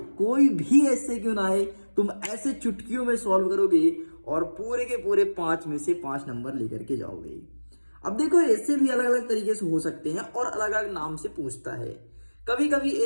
कोई भी ऐसे क्यों ना आए, तुम ऐसे चुटकियों में सॉल्व करोगे और पूरे के पूरे 5 में से 5 नंबर लेकर के जाओगे। अब देखो ऐसे भी अलग अलग तरीके से हो सकते हैं और अलग अलग नाम से पूछता है। कभी कभी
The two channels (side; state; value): both; inverted; correlation -1.00